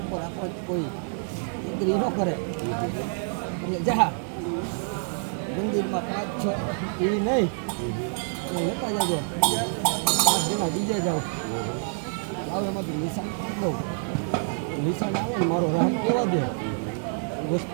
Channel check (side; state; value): left; silent; 60 dB below the other